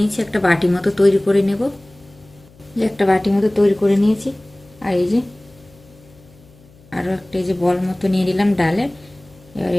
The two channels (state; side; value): noise; left; hum, 27 dB below the sound